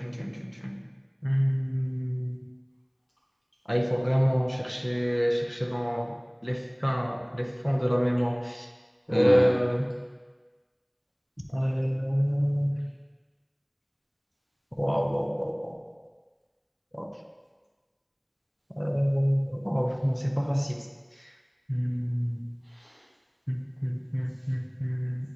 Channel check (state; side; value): identical; both; correlation 1.00